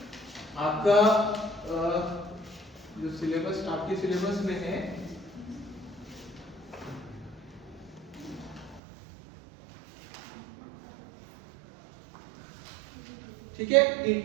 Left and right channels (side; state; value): left; drops out; at 8.8 s